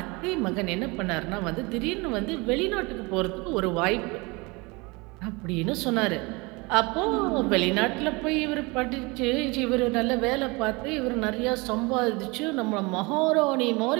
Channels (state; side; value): quieter; left; 26.2 dB